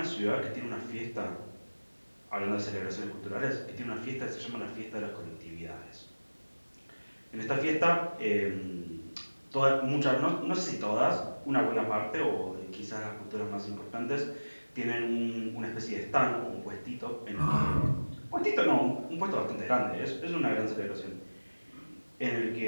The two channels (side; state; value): both; inverted; correlation -1.00